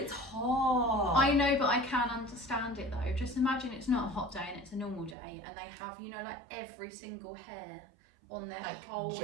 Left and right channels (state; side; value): drops out; left; at 5.2 s